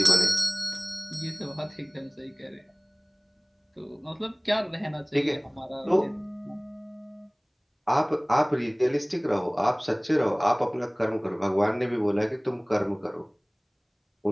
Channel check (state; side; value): identical; both; correlation 1.00